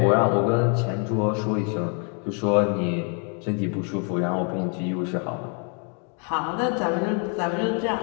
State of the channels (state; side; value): quieter; right; 39.0 dB